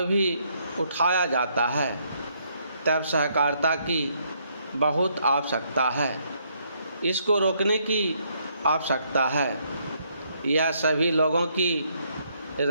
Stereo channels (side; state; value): both; inverted; correlation -0.71